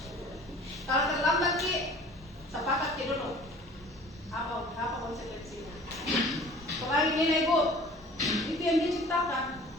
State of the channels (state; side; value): normal; both; correlation 0.47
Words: Kalau terlambat sih, sepakat dulu. Apa konsekuensinya? Kemarin ini ibu, itu yang dia ciptakan.